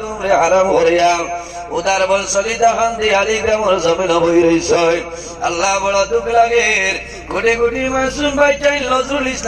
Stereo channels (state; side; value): identical; both; correlation 1.00